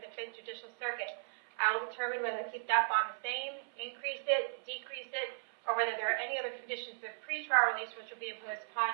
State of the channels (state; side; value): silent; left; 53 dB below the other